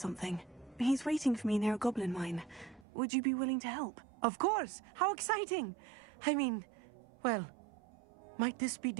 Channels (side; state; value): left; drops out; at 2.9 s